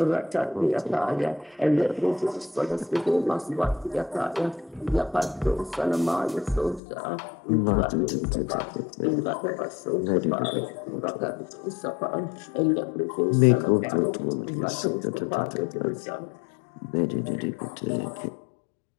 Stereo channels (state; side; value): drops out; right; at 6.8 s